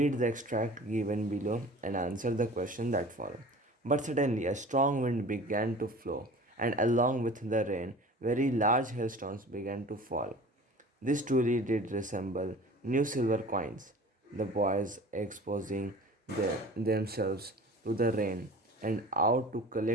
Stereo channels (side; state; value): both; normal; correlation 0.42